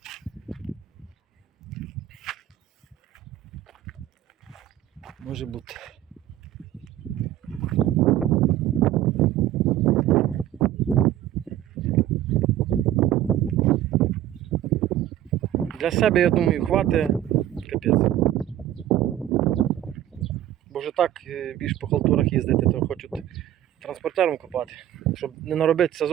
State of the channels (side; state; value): left; quieter; 12.5 dB